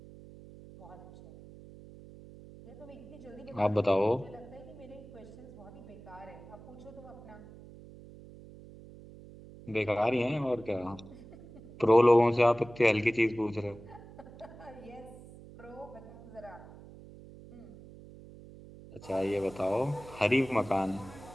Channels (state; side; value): noise; right; hum, 18 dB below the sound